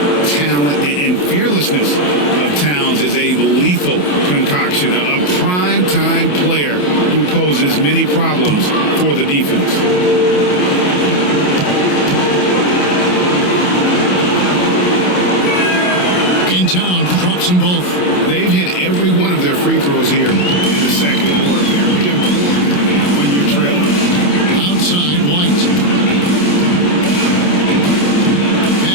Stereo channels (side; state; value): right; late; 28 ms